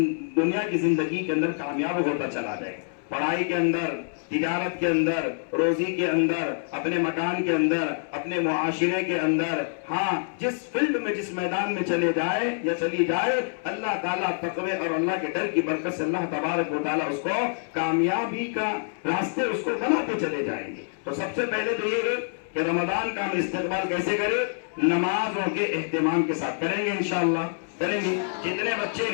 کی زندگی کے اندر کامیاب ہوتا چلا جائے، پڑھائی کے اندر، تجارت کے اندر، روزی کے اندر، اپنے مکان کے اندر، اپنے معاشرے کے اندر، ہاں جس فیلڈ میں جس میدان میں چلے جائے یا چلی جائے، اللہ تعالیٰ تقوی اور اللہ کے ڈر کی برکت سے اللہ تبارک و تعالیٰ اس کو کامیابی کا راستے اس کو بناتے چلے جائیں گے۔ تو سب سے پہلے تو یہ ہے کہ رمضان کا ہم استقبال کیسے کریں؟ نمازوں کے اہتمام کے ساتھ کریں گے، انشاءاللہ کریں گے۔ جتنے بچے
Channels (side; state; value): right; silent; 61 dB below the other